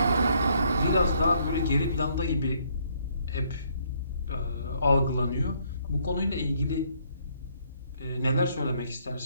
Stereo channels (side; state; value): both; inverted; correlation -0.69